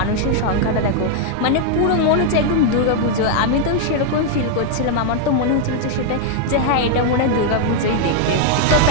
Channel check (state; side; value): different; both; correlation 0.00